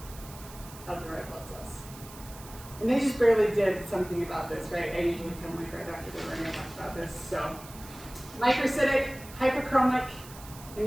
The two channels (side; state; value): right; noise; hiss, 17 dB below the sound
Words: of the red blood cells. And they just barely did something about this, right? I usually come like right after they were going to talk about this. So microcytic, hyperchromic